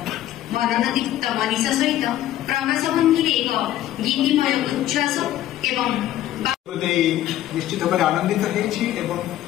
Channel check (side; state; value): right; quieter; 13.3 dB